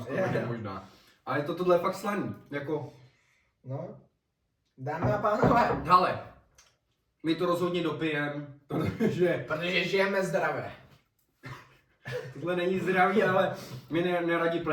skoro, Je. možná. Ale tohle je fakt slaný. Jako, No. Dámy a pánové, hele, my to rozhodně dopijem, protože protože žijeme zdravě. tohle není zdravý, ale my neradi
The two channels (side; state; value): both; identical; correlation 1.00